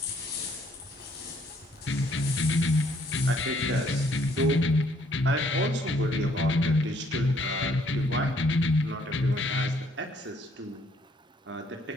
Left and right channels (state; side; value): normal; both; correlation 0.66